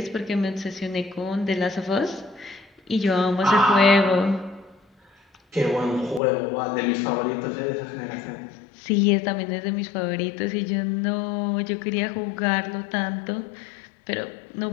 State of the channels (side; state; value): right; drops out; at 6.2 s